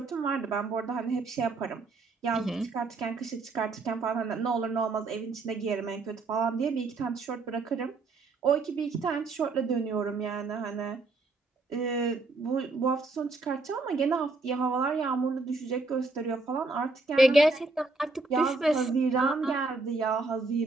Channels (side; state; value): left; quieter; 3.6 dB